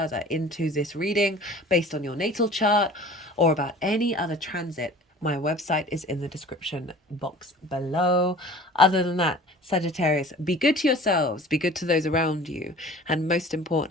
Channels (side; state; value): both; normal; correlation 0.44